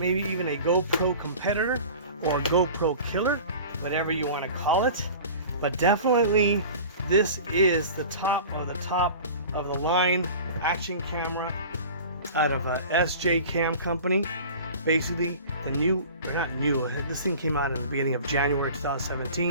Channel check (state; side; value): inverted; both; correlation -0.39